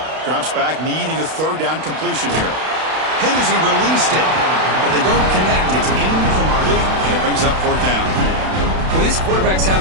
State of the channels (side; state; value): left; late; 32 ms